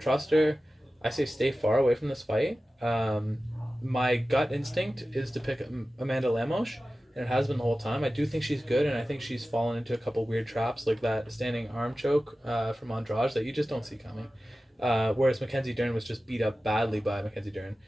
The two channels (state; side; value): normal; both; correlation 0.95